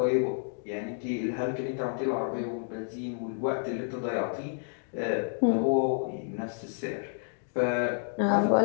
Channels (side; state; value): right; silent; digital silence